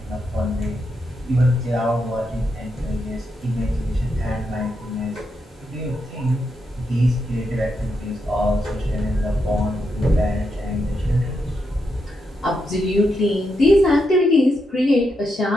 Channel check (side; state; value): both; normal; correlation 0.83